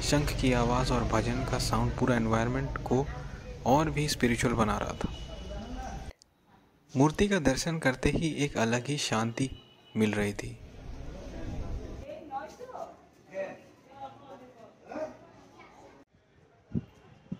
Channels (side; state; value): both; identical; correlation 1.00